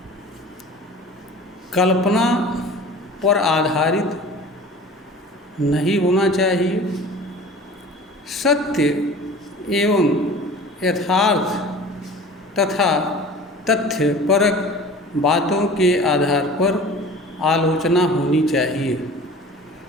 कल्पना पर आधारित नहीं होना चाहिए, सत्य एवं यथार्थ तथा तथ्यपरक बातों के आधार पर आलोचना होनी चाहिए।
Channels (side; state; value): both; normal; correlation 0.41